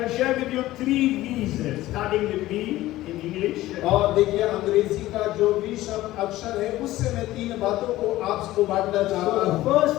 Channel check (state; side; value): quieter; right; 16.2 dB